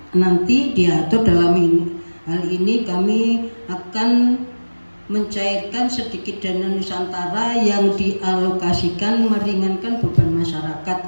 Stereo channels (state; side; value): inverted; both; correlation -1.00